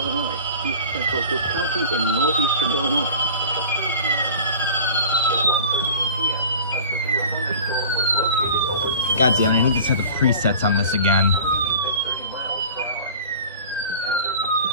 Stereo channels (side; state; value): both; inverted; correlation -0.40